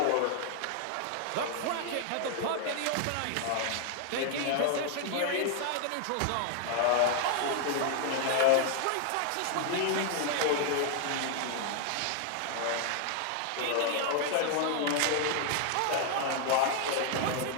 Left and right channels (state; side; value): different; both; correlation 0.00